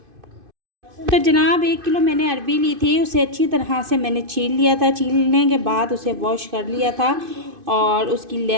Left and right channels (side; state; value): left; late; 2.5 ms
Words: तो जनाब, 1 किलो मैंने अरवी ली थी, उसे अच्छी तरह से मैंने छील लिया था। छीलने के बाद उसे वॉश कर लिया था और उसकी